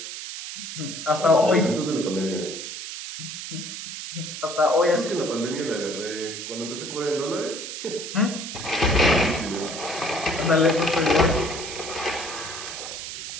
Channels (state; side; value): noise; right; hiss, 8 dB below the sound